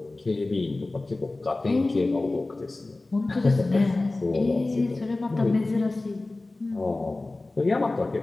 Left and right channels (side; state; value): right; quieter; 3.0 dB